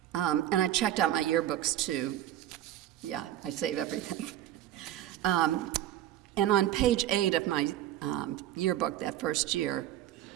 and I checked out my yearbooks too. Yeah, I save everything. And on page 8 of my yearbook that first year,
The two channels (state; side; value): quieter; left; 12.7 dB